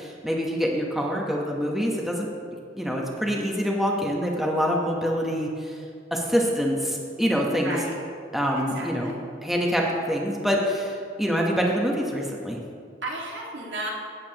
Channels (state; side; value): normal; both; correlation 0.68